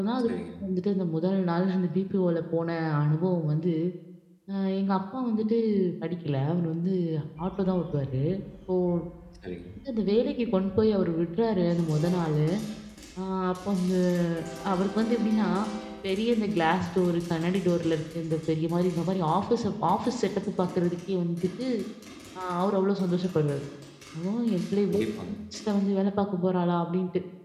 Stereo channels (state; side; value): identical; both; correlation 1.00